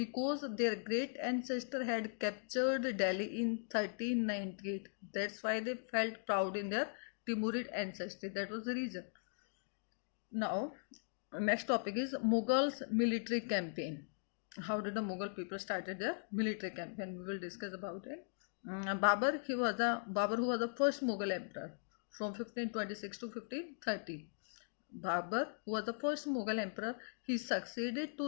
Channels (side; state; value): right; silent; digital silence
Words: their great ancestor had captured Delhi in 1398. That's why they felt proud in their Timurid ancestry. That was the reason. Now, next topic is Mughals military campaign. How did the Mughal people started their military campaign? We will discuss about it. Babur, who was the first Mughal emperor from 1526 to 1530. Babur, who was the first Mughal emperor, he succeeded to